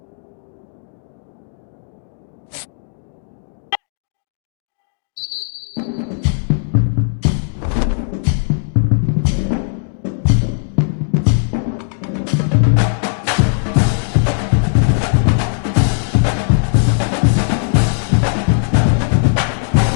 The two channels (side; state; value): right; silent; digital silence